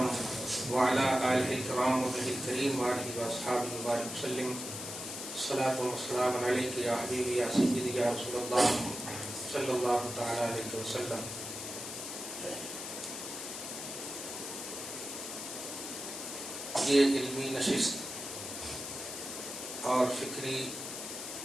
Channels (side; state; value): left; noise; hiss, 7 dB below the sound